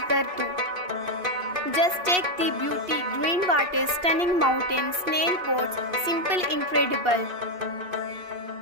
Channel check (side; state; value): left; late; 2.7 ms